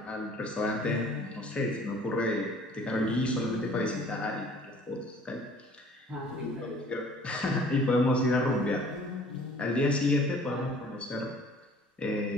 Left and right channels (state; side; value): normal; both; correlation 0.52